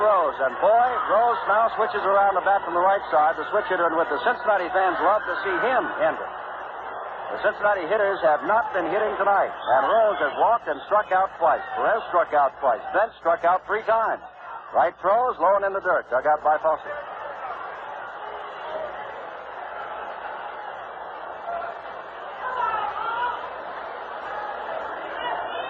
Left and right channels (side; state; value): both; identical; correlation 1.00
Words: and boy, Rose now switches around the bat from the right side, the switch hitter, and with the Cincinnati fans love to see him enter. The Cincinnati hitters have not been hitting tonight, and Rose has walked and struck out twice. Perez struck out twice. Bench struck out 3 times. Right throws, low and in the dirt, dug out by Fosse.